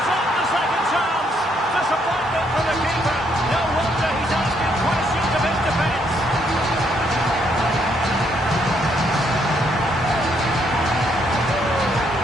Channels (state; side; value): normal; both; correlation 0.72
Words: on the second chance. Disappointment for the keeper. No wonder he's asking questions of his defence.